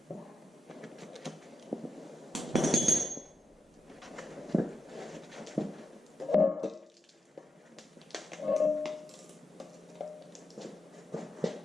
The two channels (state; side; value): normal; both; correlation 0.87